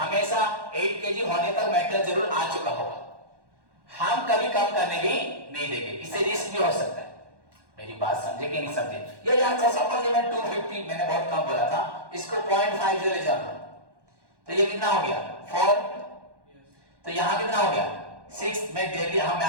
हमेशा 8 kg होने तक मेटल जरूर आ चुका होगा। हम कभी कम करने भी नहीं देंगे, इससे रिस्क भी हो सकता है। मेरी बात समझे कि नहीं समझे? ये यार सपोज मैं 250 मैंने बहुत कम बोला था, इसको 0.5 ले जाना, तो ये कितना हो गया? 4। तो यहां कितना हो गया? 6। में डेली हम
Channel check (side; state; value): left; late; 1.1 ms